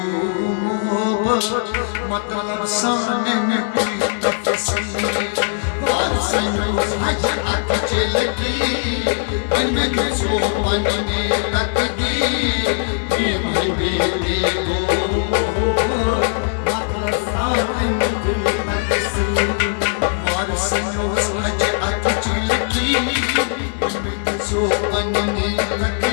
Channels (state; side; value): silent; right; 59 dB below the other